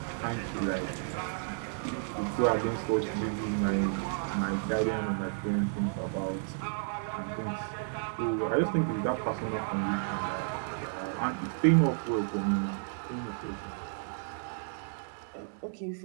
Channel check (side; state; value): left; silent; 56 dB below the other